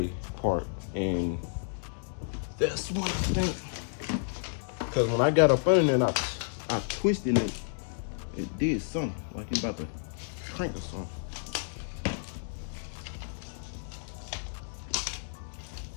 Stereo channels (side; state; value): right; silent; digital silence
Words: part, and that's what I think. Cause when I got up under there and I twisted it, it did something, like he about to crank or something.